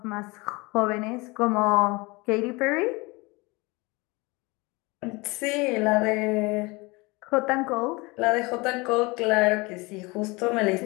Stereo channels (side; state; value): right; quieter; 25.1 dB